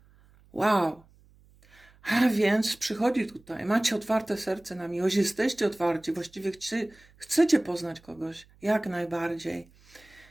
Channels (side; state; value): right; noise; hum, 29 dB below the sound